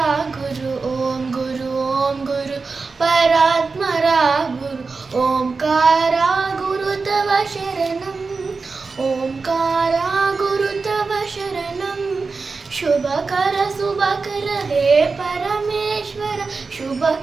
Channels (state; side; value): quieter; left; 4.3 dB